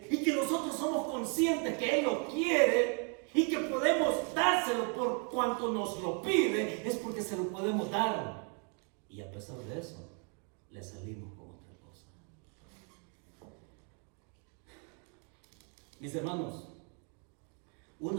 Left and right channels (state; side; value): quieter; left; 38.7 dB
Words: y que nosotros somos conscientes que Él lo quiere y que podemos dárselo por cuanto nos lo pide, es porque se lo podemos dar. Y a pesar de eso, le salimos con otra cosa. Mis hermanos,